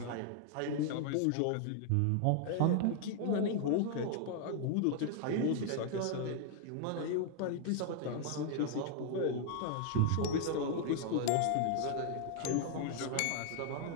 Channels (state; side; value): different; both; correlation 0.00